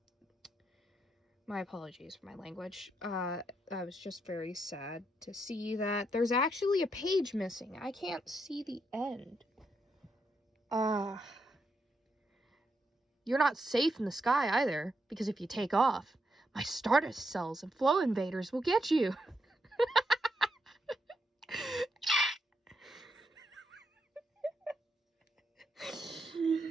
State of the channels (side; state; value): both; normal; correlation 0.81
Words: My apologies for my language. I was just very sad to see that there's actually a page missing. I can't see the end. You're not safe in the sky either, because if you take off, my Stardust cells and flow invaders will get you.